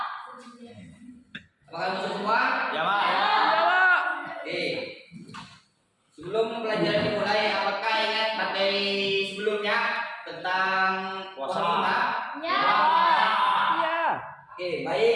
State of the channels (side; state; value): both; identical; correlation 1.00